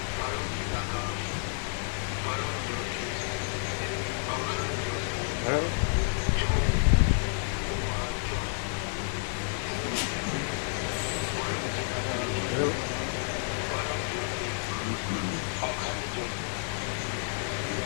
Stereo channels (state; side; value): silent; right; 58 dB below the other